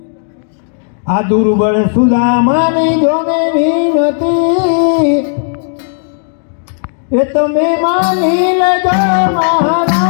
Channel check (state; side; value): silent; right; 59 dB below the other